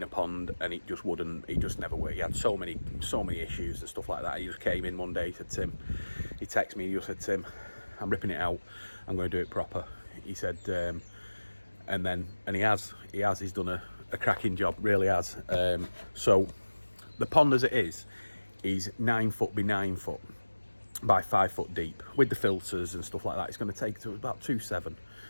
pond, and it just never worked. He had so many issues and stuff like that. He just came in one day, he said, Tim, he texted me, he just said, Tim, I'm ripping it out, I'm going to do it proper. He said, and he has, he's done a cracking job, really has. So the pond as it is 9 foot by 9 foot by 5 foot deep with the filters and stuff like that. It's going to take to about 2.7.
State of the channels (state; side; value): inverted; both; correlation -1.00